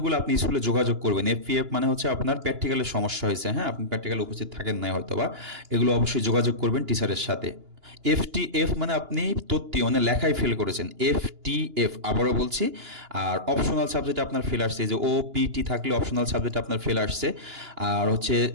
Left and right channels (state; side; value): late; left; 2.9 ms